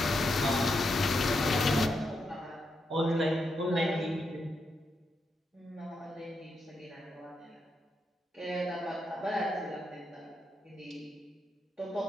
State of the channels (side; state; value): both; normal; correlation 0.83